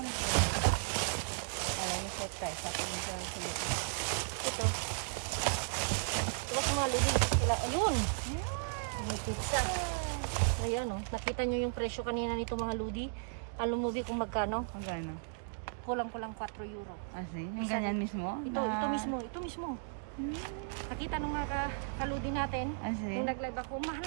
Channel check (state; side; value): silent; left; digital silence